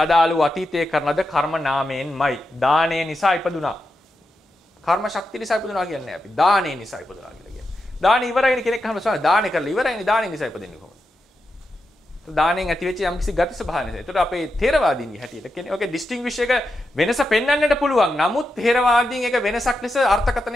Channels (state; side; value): normal; both; correlation 0.87